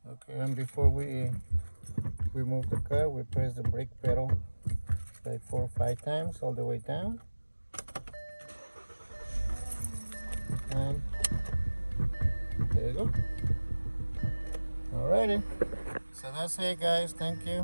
okay, and before we move the car, we press the brake pedal like 4 or 5 times all the way down. And there you go. Alrighty. So that's it, guys. Thank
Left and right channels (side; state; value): both; inverted; correlation -1.00